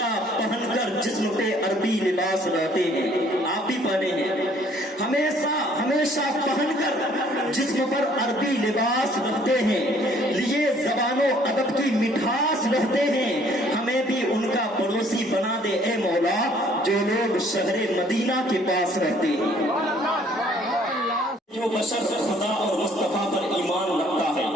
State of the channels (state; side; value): normal; both; correlation 0.60